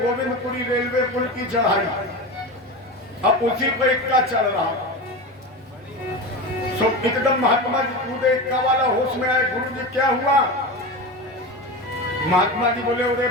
रेलवे पुल की चढ़ाई, अब उसी पर इक्का चल रहा, सो एकदम महात्मा जी कूदे, इक्का वाला होश में आए, गुरु जी क्या हुआ? महात्मा जी बोले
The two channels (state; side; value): normal; both; correlation 0.25